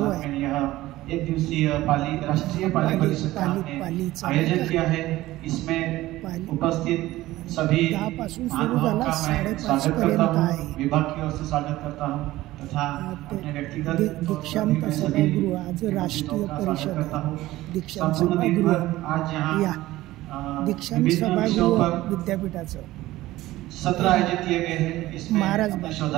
में यह एक दिवसीय राष्ट्रीय पाली परिषद का हमने आयोजन किया है। इसमें उपस्थित सभी महानुभावों का मैं स्वागत करता हूँ, विभाग की ओर से स्वागत करता हूँ तथा अपने व्यक्तिगत दीक्षांत सभागृह आज राष्ट्रीय परिषद दीक्षांत सभागृह आज यहाँ दीक्षांत सभागृह विद्यापीठाचं सत्र आयोजित किए गए हैं। इसमें महाराज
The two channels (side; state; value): left; quieter; 16.7 dB